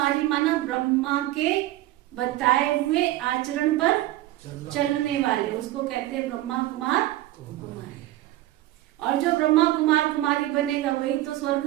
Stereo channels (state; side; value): quieter; left; 15.8 dB